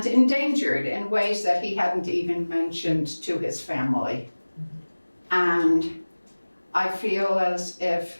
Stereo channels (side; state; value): both; inverted; correlation -1.00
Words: endangered in ways that he hadn't even mentioned to his family. And I feel as